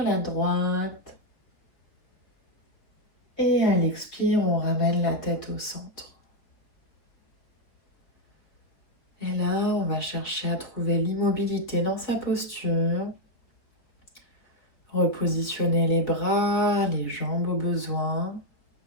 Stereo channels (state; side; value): late; right; 3.8 ms